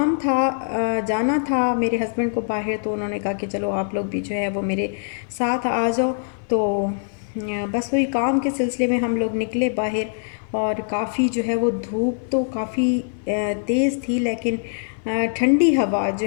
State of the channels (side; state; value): right; silent; 57 dB below the other